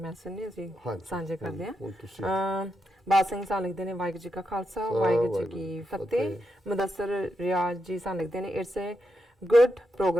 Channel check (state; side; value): normal; both; correlation 0.84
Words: ਨੇ, ਅਸੀਂ ਸਾਂਝੇ ਕਰਦੇ ਹਾਂ। ਬਾਦ ਸਿੰਘ ਸਾਨੂੰ ਲਿਖਦੇ ਨੇ ਵਾਹਿਗੁਰੂ ਜੀ ਕਾ ਖਾਲਸਾ ਵਾਹਿਗੁਰੂ ਜੀ ਕੀ ਫਤਿਹ। ਮੁਦੱਸਰ ਰਿਆਜ਼ ਜੀ ਸਾਨੂੰ ਲਿਖਦੇ ਨੇ it's A good